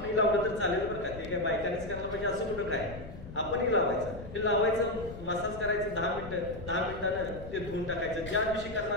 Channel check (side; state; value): left; noise; rumble, 12 dB below the sound